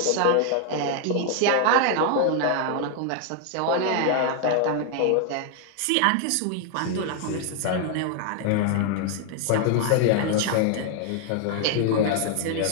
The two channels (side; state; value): both; different; correlation 0.00